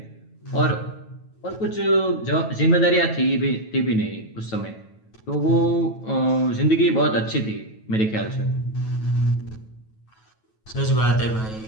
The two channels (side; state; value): right; late; 9.2 ms